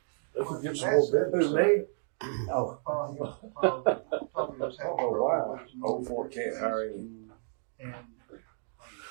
could get some more business. Who, me? Oh, wow. Old Fort can't hire any.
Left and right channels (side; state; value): left; silent; digital silence